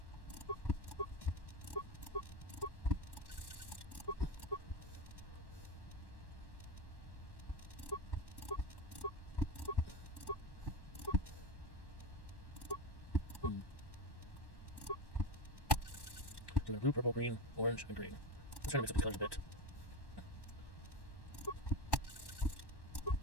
So blue, purple, green, orange, and green. Let's try to mix up these colors a bit.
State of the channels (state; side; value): late; right; 1.1 ms